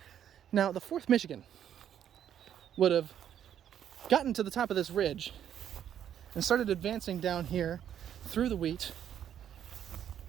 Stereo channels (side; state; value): left; quieter; 9.8 dB